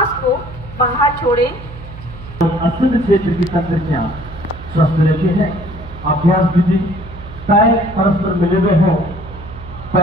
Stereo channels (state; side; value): noise; right; hum, 14 dB below the sound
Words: को बाहर छोड़ें। अस्तुत क्षेत्र की तंत्रिकाएं स्वस्थ रहती है। अभ्यास विधि पैर परस्पर मिले हुए हों,